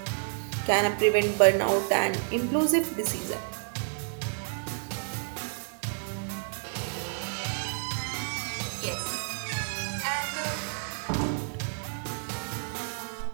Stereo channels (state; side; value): silent; left; digital silence